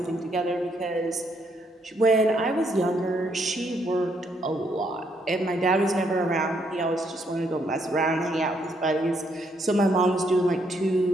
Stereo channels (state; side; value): normal; both; correlation 0.73